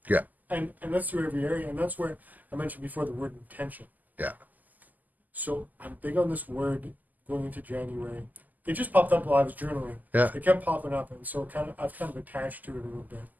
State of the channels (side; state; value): left; late; 0.082 ms